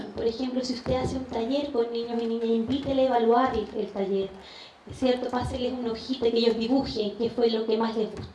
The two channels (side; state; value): both; identical; correlation 1.00